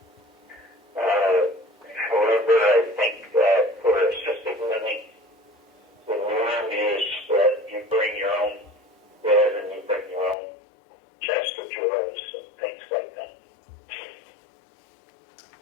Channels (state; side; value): drops out; right; at 10.4 s